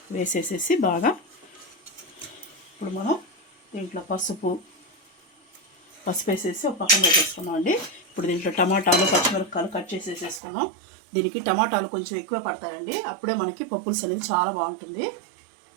వేసేసేసి బాగా ఇప్పుడు మనం దీంట్లో పసుపు వేసేసి ఒక పక్కన పెట్టేసుకున్నాం అండి. ఇప్పుడు దీంట్లో టమాటాలు, పచ్చిమిరపకాయలు కట్ చేసేసుకున్నాం. దీనికి టమాటాలు కొంచెం ఎక్కువ పడతాయండి, అప్పుడే మనకి పప్పులుసు అనేది చాలా బాగుంటుంది.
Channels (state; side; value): drops out; left; at 10.4 s